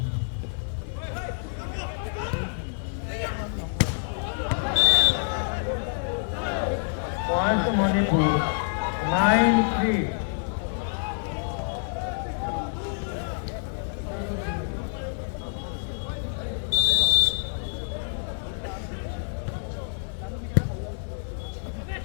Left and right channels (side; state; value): right; silent; digital silence